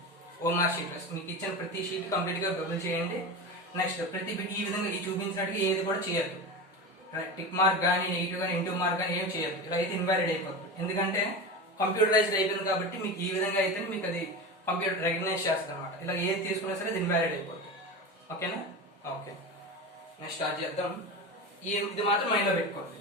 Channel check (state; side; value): normal; both; correlation 0.25